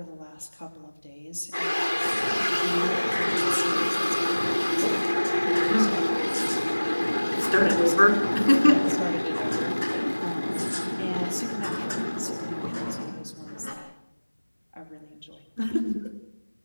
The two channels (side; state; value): both; inverted; correlation -1.00